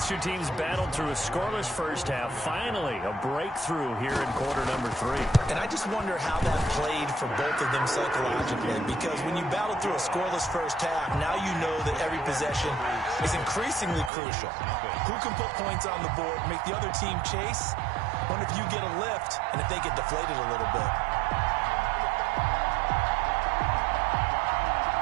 two teams battled through a scoreless first half. Finally, a breakthrough here in quarter number 3. And I just wonder how that played for both of them psychologically, because when you battle through a scoreless first half, now you know that every possession is increasingly crucial. Who can put points on the board, make the other team chase? Wonder if you get a lift and if they get deflated a little bit.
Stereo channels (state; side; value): drops out; left; at 14.1 s